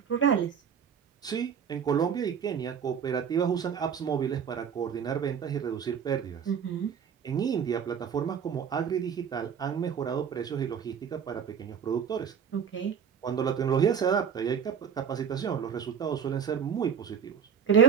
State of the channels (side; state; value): left; quieter; 7.4 dB